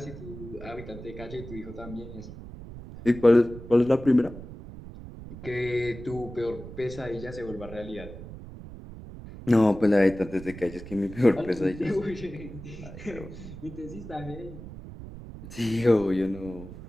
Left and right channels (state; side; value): noise; right; rumble, 13 dB below the sound